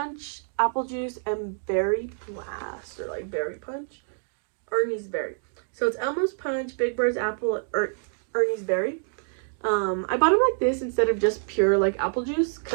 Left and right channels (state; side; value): silent; left; digital silence